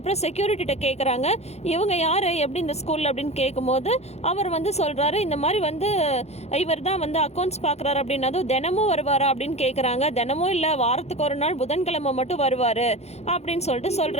செக்யூரிட்டிகிட்ட கேட்குறாங்க, இவங்க யார், எப்படி இந்த ஸ்கூலில் அப்படின்னு கேட்கும்போது அவர் வந்து சொல்கிறாரு, இந்த மாதிரி வந்து இவர் தான் வந்து அக்கௌண்ட்ஸ் பார்க்குறாரு அப்படின்னதும் தினமும் வருவாரா அப்படின்னு கேட்குறாங்க. தினமும் இல்லை, வாரத்துக்கு ஒரு நாள் புதன்கிழமை மட்டும் வருவார் அப்படின்னு சொல்லிட்டு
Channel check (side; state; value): right; late; 0.31 ms